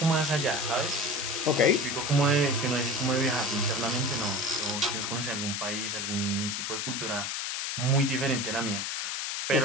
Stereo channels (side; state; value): left; noise; hiss, 2 dB below the sound